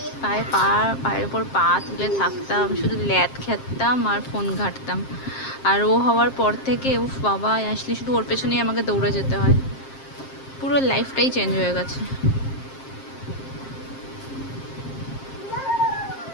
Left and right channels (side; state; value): right; late; 7.5 ms